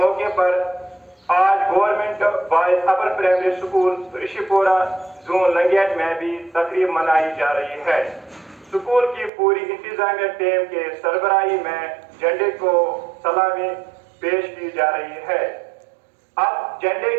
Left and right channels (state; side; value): drops out; left; at 9.3 s